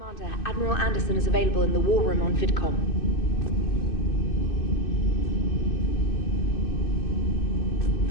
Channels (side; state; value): right; late; 2.6 ms